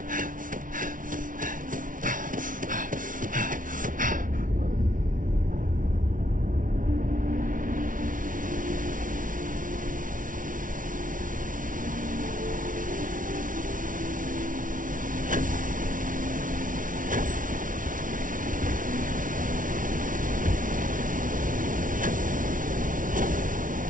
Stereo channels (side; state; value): left; late; 0.38 ms